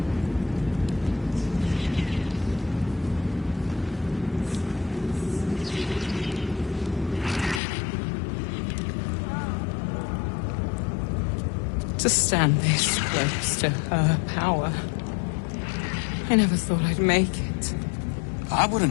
To stand this close to her power. I never thought I'd make it. I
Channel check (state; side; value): drops out; right; at 7.6 s